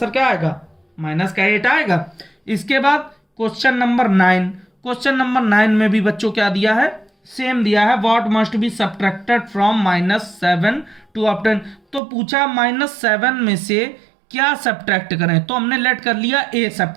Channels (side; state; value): left; drops out; at 12.0 s